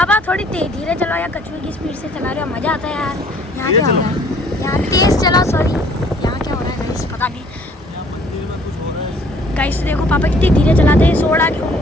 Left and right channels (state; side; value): normal; both; correlation 0.58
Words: थोड़ी धीरे चलाओ या कछुए की स्पीड से चला रहे हो, मजा आता है यार। यहाँ क्या हो रहा है? यहाँ तेज चलाओ। सॉरी, यहाँ क्या हो रहा है गाइस? पता नहीं। यहाँ मंदिर में कुछ हो रहा है गाइस देखो पापा कितनी धीरे चलाते हैं।